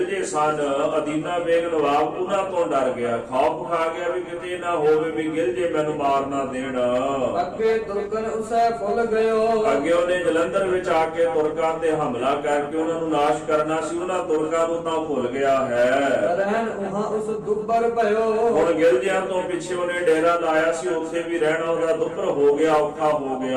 ਸਨ ਅਦੀਨਾ ਬੇਗ ਨਵਾਬ ਉਹਨਾਂ ਤੋਂ ਡਰ ਗਿਆ, ਖੌਫ ਖਾ ਗਿਆ ਵੀ ਕਿਤੇ ਨਾ ਹੋਵੇ ਵੀ ਗਿਰਜੇ ਮੈਨੂੰ ਮਾਰ ਨਾ ਦੇਣ। ਅੱਗੇ ਤੁਰਕਨ ਉਸੈ ਫੁੱਲ ਗਇਓ ਅੱਗੇ ਉਹਨੇ ਜਲੰਧਰ ਵਿੱਚ ਆ ਕੇ ਤੁਰਕਾਂ ਤੇ ਹਮਲਾ ਕਰਕੇ ਉਹਨਾਂ ਨੂੰ ਨਾਸ਼ ਕਰਨਾ ਸੀ। ਉਹਨਾਂ ਤੁਰਕਾਂ ਨੂੰ ਤਾਂ ਭੁੱਲ ਗਿਆ ਹੈ। ਰਹਿਣ ਉਹਾਂ ਉਸ ਦੁੱਬਰ ਭਇਓ ਹੁਣ ਗਿਰਜਿਆਂ ਤੋਂ ਪਿੱਛੇ ਉਹਨੇ ਡੇਰਾ ਲਾਇਆ ਸੀ, ਉੱਥੇ ਵੀ ਰਹਿਣਾ ਉਹਦਾ ਦੁੱਭਰ ਹੋ ਗਿਆ, ਔਖਾ ਹੋ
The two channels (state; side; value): identical; both; correlation 1.00